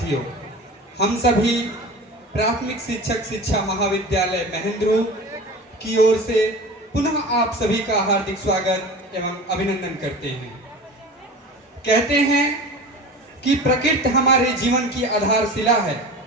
हम सभी प्राथमिक शिक्षक शिक्षा महाविद्यालय महेंद्रू की ओर से पुनः आप सभी का हार्दिक स्वागत एवं अभिनंदन करते हैं। कहते हैं कि प्रकृति हमारे जीवन की आधारशिला है,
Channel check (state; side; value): normal; both; correlation 0.35